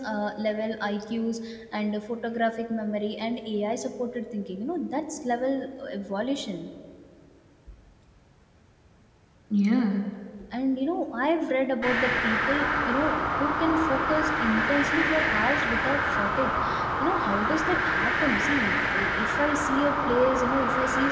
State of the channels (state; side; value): identical; both; correlation 1.00